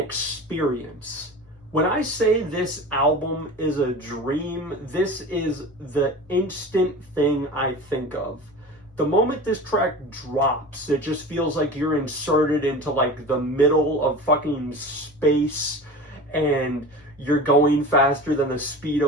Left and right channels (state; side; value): normal; both; correlation 0.34